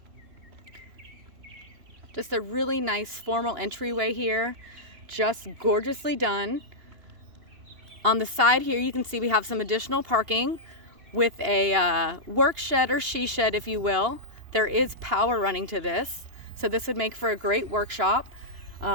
Just a really nice formal entryway here, just gorgeously done. On the side here, you can see we have some additional parking with a work shed or she shed, if you will. There is power running to this, so this would make for a great workshop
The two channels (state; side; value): late; left; 2.8 ms